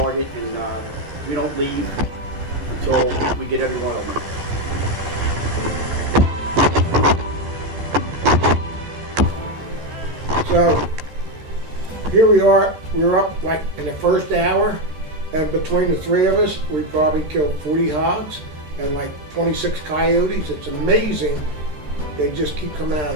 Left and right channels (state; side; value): late; left; 13 ms